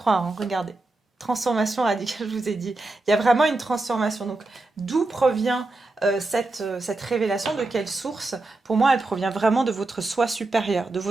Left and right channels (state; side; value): quieter; left; 3.0 dB